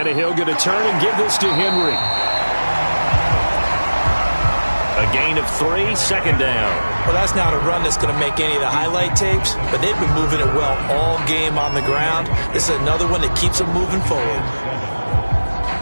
going to turn and give this to Henry. A gain of 3, 2nd down. Well, that's not a run that's going to make any of the highlight tapes, but they've been moving it well all game on the ground. This is another one that keeps them moving forward.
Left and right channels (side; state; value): both; inverted; correlation -1.00